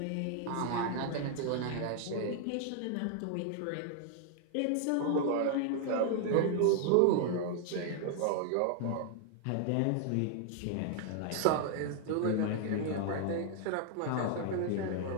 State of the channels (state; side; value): different; both; correlation 0.00